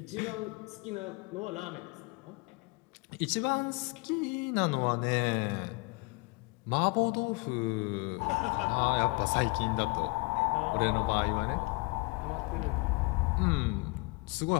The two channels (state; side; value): quieter; right; 28.4 dB